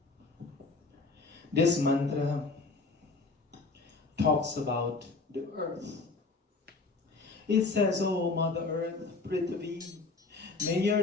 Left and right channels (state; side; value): quieter; right; 3.9 dB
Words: This mantra talks about the earth. It says, "O Mother Earth, Prithvi, may